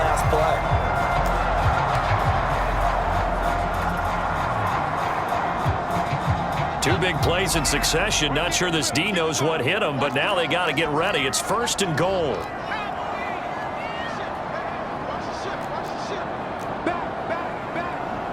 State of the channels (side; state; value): both; identical; correlation 1.00